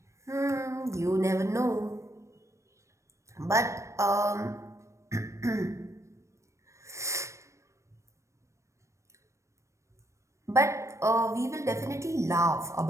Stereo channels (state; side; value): late; left; 0.15 ms